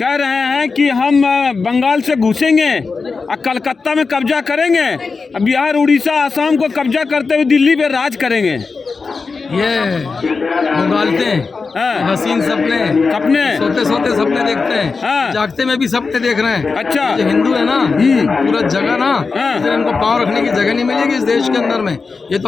रहे हैं कि हम बंगाल से घुसेंगे और कलकत्ता में कब्जा करेंगे, बिहार, उड़ीसा, आसाम को कब्जा करते हुए दिल्ली पे राज करेंगे। ये उगालते हैं हसीन सपने सोते सोते सपने देखते हैं, जागते में भी सपने देख रहे हैं। अच्छा, जो हिंदू है ना पूरा जगह ना, इसलिए इनको पाँव रखने की जगह नहीं मिलेगी इस देश के अंदर में। ये तो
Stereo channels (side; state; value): right; quieter; 4.6 dB